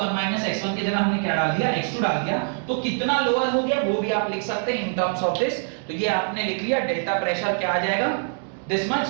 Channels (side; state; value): left; silent; 60 dB below the other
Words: माइनस x1 की जगह हमने क्या डाल दिया, x2 डाल दिया। तो कितना लोअर हो गया वो भी आप लिख सकते हैं इन टर्म्स ऑफ दिस। तो ये आपने लिख लिया, डेल्टा प्रेशर क्या आ जाएगा, दिस मच।